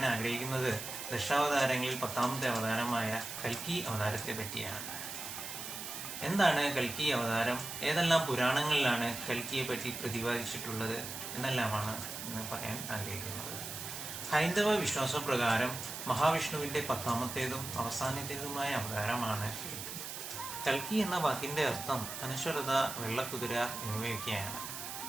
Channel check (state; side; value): noise; right; hiss, 7 dB below the sound